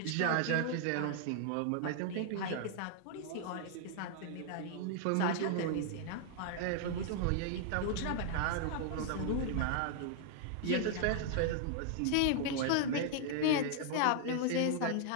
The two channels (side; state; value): both; different; correlation -0.01